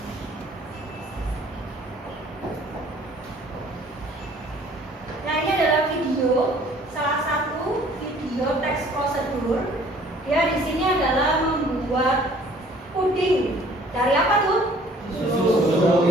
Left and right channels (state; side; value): normal; both; correlation 0.55